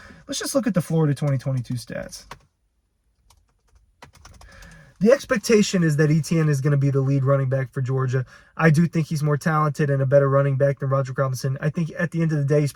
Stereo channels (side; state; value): both; identical; correlation 1.00